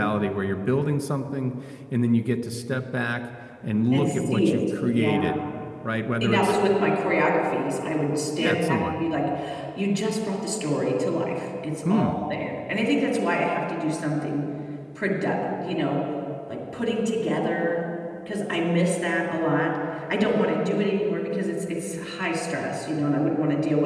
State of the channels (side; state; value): both; identical; correlation 1.00